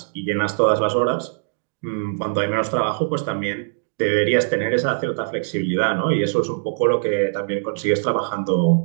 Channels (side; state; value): left; silent; digital silence